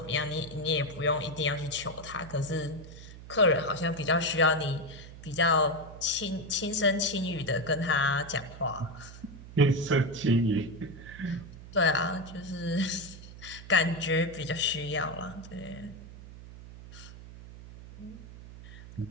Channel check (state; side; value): noise; right; hum, 15 dB below the sound